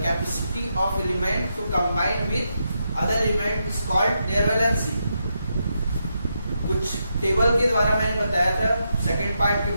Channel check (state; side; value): inverted; both; correlation -0.83